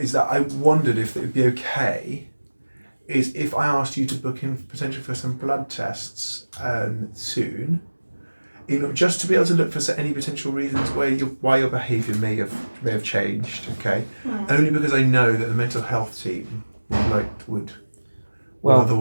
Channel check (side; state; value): both; inverted; correlation -1.00